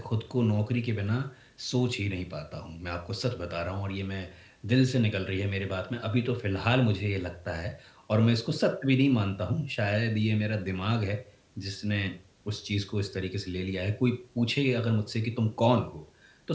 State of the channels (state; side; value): identical; both; correlation 1.00